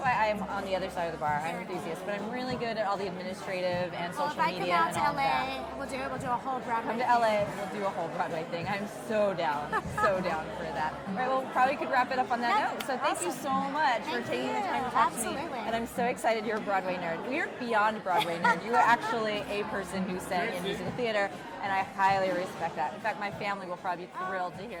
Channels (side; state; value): both; identical; correlation 1.00